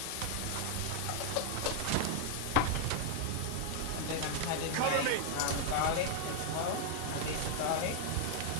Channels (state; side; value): different; both; correlation 0.00